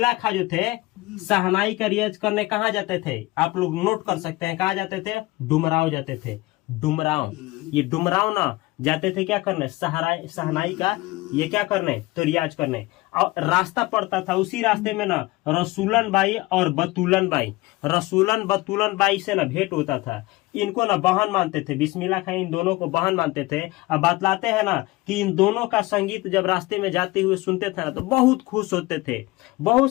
खां जो थे शहनाई का रियाज करने कहाँ जाते थे? आप लोग नोट कर सकते हैं। कहाँ जाते थे? डुमराव जाते थे। डुमराव, ये डुमराव ना जाते थे क्या करने? शहनाई का ये क्या करने? तो रियाज करने। और रास्ता पड़ता था, उसी रास्ते में ना रसूलन बाई और बतूलन बाई, रसूलन बतूलन बाई से ना भेंट होता था। इनको ना बहन मानते थे। बिस्मिल्लाह खां इन दोनों को बहन मानते थे। अब बतलाते हैं ना कि इन दोनों का संगीत जब रास्ते में जाते हुए सुनते थे ना तो बहुत खुश होते थे। बहुत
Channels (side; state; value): right; quieter; 20.5 dB